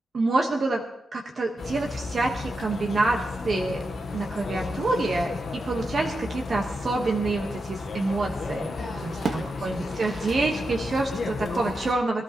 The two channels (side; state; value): both; normal; correlation 0.88